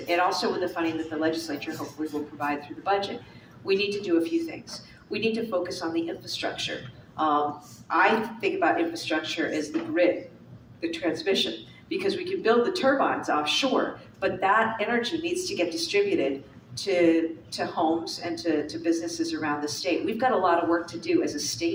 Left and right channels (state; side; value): identical; both; correlation 1.00